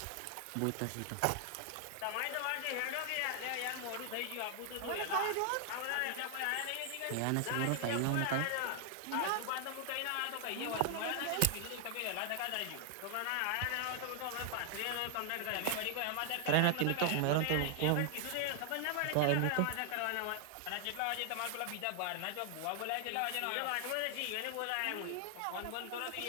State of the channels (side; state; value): both; different; correlation 0.00